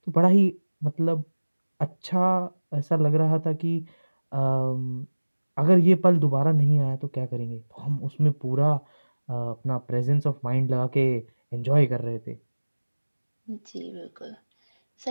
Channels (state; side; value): inverted; both; correlation -1.00